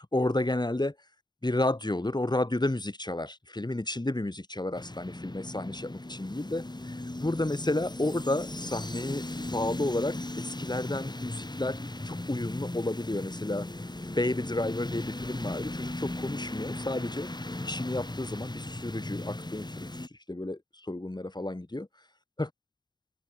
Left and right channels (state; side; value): late; right; 0.21 ms